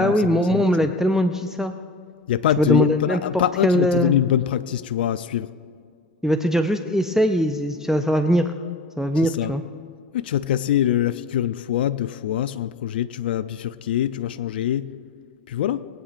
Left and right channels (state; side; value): quieter; right; 3.5 dB